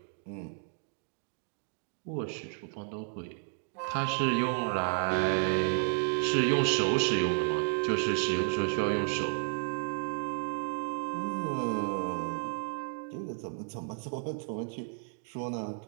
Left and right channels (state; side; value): silent; left; 56 dB below the other